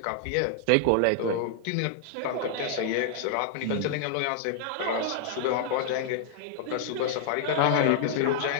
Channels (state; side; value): different; both; correlation -0.01